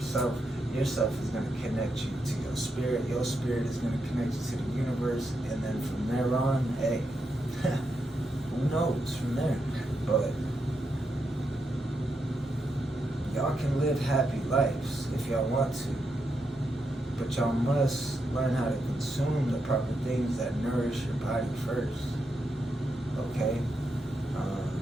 Yourself is gonna connect you to your spirit. Your spirit is gonna connect you to the universe. And then from there on, hey, who knows from there? But y'all can live happy lives if y'all want to. But y'all must learn how to consume the proper things that nourish your body first. Okay?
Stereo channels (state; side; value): normal; both; correlation 0.83